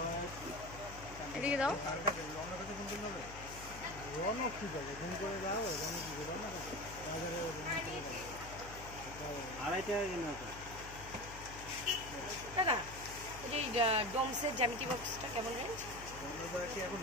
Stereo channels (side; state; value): left; noise; hum, 13 dB below the sound